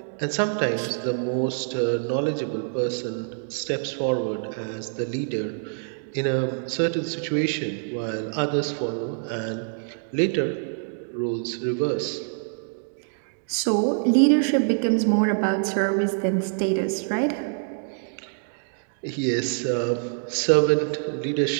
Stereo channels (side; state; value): left; silent; digital silence